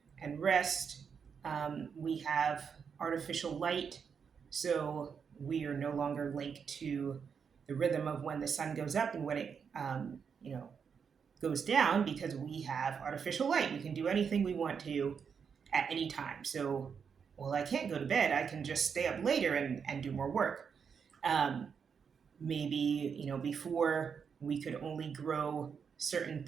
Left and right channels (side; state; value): left; quieter; 6.5 dB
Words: and rest. We have artificial light, so we are no longer linked to the rhythm of when the sun goes up and when it, goes down because we have artificial light. We can do anything we want to at any time. So, well, I can't go to bed. I can just stay up later and do more work. Um, Maybe before we could only grow certain